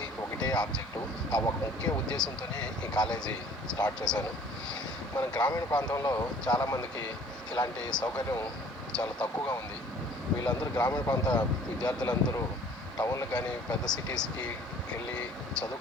ఒకటే ఆబ్జెక్టు. ఆ ఒక ముఖ్య ఉద్దేశంతోనే ఈ కాలేజీ స్టార్ట్ చేశాను. మన గ్రామీణ ప్రాంతంలో చాలామందికి ఇలాంటి సౌకర్యం చాలా తక్కువగా ఉంది. వీళ్ళందరూ గ్రామీణ ప్రాంత విద్యార్థులందరూ టౌన్లకు కానీ పెద్ద సిటీస్కి వెళ్ళి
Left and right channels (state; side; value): normal; both; correlation 0.53